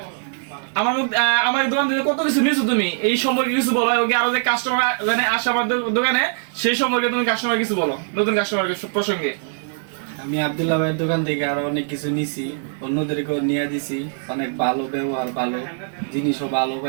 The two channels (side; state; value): left; silent; digital silence